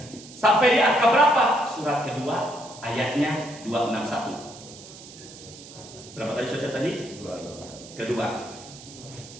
Sampai di angka berapa? Surat kedua ayatnya 261. Berapa tadi saja tadi? Kedua.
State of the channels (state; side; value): noise; right; hiss, 17 dB below the sound